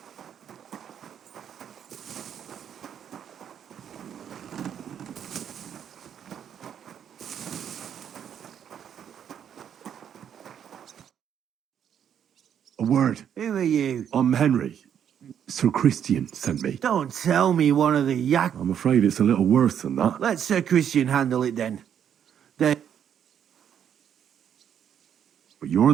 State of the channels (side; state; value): left; quieter; 8.9 dB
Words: A word. Who are you? I'm Henry. Sir Christian sent me. Don't tell me one of the yak... I'm afraid it's a little worse than that. Let Sir Christian handle it then. But you're